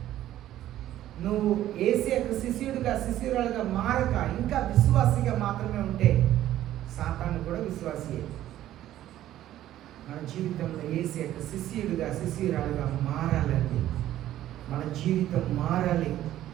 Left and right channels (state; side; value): quieter; left; 13.1 dB